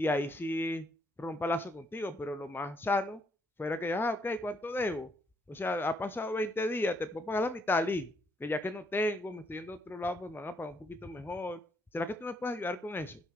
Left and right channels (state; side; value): normal; both; correlation 0.73